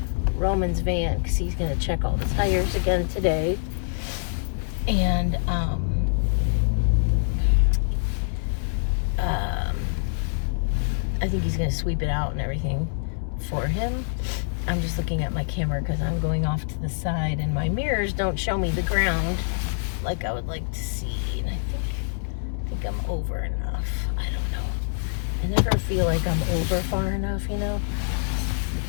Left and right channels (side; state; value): right; silent; digital silence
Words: Roman's van because he's going to check all the tires again today. And, I think he's going to sweep it out and everything for him. I'm just looking at my camera because I'm going off to the side and my mirrors don't show me the ground like I would like to see. And I think I'm over enough. I don't know. I never feel like I'm over far enough, you know?